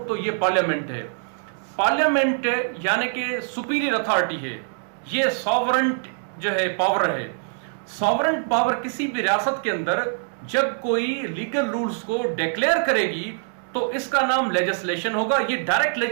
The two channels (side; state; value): left; silent; digital silence